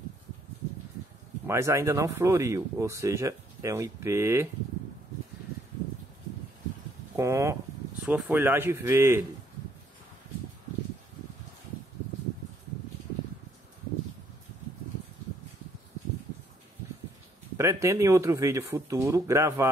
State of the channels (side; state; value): both; normal; correlation 0.68